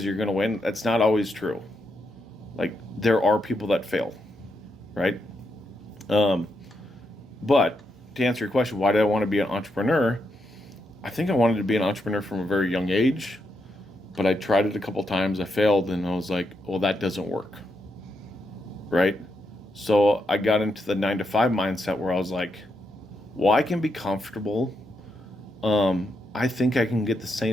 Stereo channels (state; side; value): normal; both; correlation 0.82